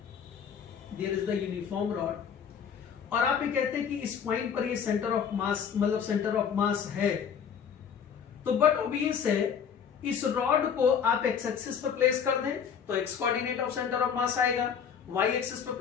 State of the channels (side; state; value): right; quieter; 7.4 dB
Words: there is the uniform rod, और आप ये कहते हैं कि इस पॉइंट पर ये सेंटर ऑफ मास, मतलब सेंटर ऑफ मास है, तो बट ऑब्वियस है इस रॉड को आप एक्स एक्सिस पर प्लेस कर दें तो X coordinate of centre of mass आएगा, वाई एक्सिस पर